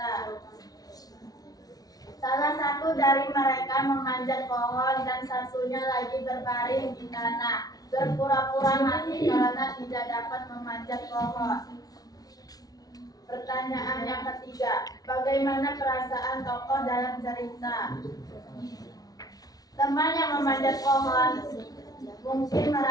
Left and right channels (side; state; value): right; late; 0.18 ms